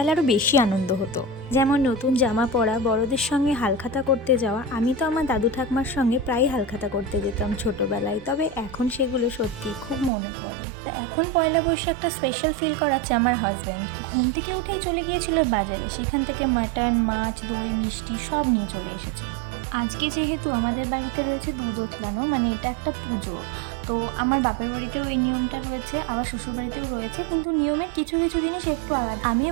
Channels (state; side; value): drops out; left; at 10.1 s